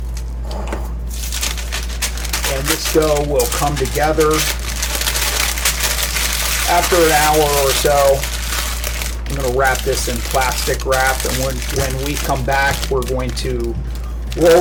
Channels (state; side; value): identical; both; correlation 1.00